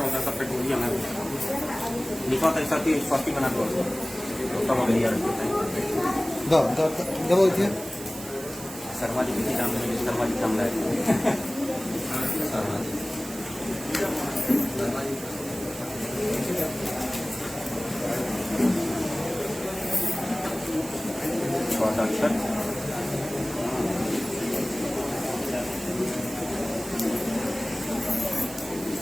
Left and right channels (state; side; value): noise; right; hiss, 12 dB below the sound